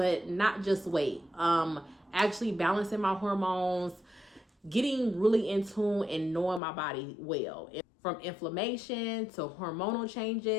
not just weight. Actually balancing my hormones, getting really in tune and knowing my body well. From inflammation to hormonal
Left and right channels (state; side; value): drops out; right; at 6.6 s